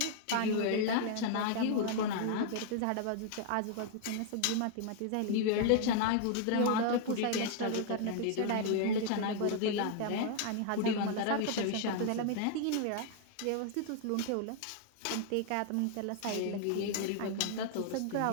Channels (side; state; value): both; different; correlation 0.00